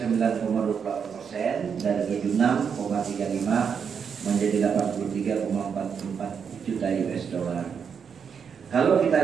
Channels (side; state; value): left; quieter; 6.8 dB